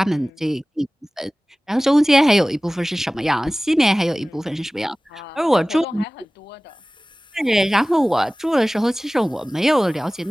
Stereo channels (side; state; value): both; normal; correlation 0.98